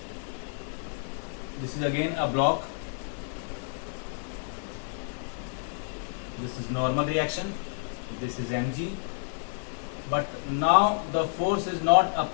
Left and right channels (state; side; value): silent; right; digital silence